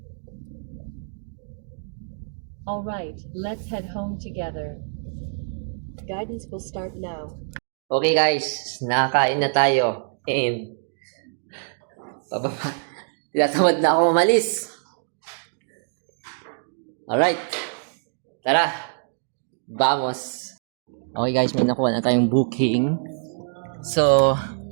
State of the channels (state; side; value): silent; left; digital silence